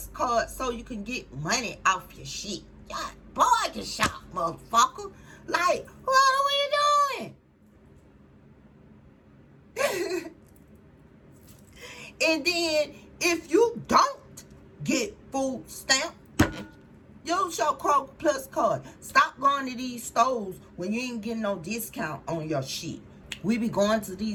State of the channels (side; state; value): both; identical; correlation 1.00